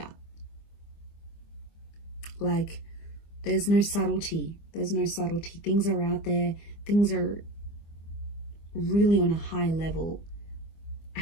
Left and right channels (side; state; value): right; late; 24 ms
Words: Like there's no subtlety. There's no subtlety. Things are out there. Things are really on a high level. I